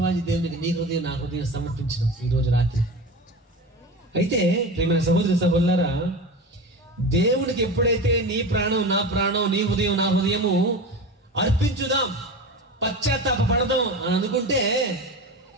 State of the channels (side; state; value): both; normal; correlation 0.29